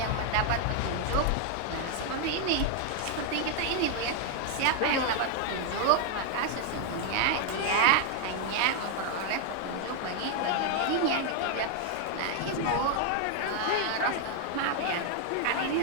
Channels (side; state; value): both; different; correlation 0.00